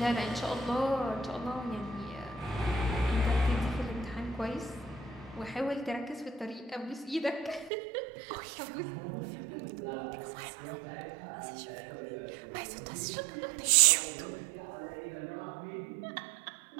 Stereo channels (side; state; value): left; drops out; at 7.7 s